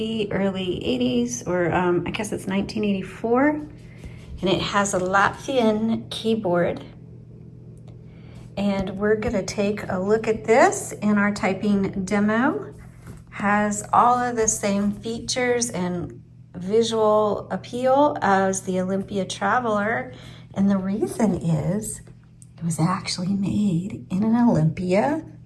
early 80s, or I guess it's 1984. And it has a Latvian keyboard. And we're gonna take a look at this in our typing demo. Has all of the same features and visual appeal as the Olympia Traveler. And the reason is it was actually made in an Olympia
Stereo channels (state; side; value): identical; both; correlation 1.00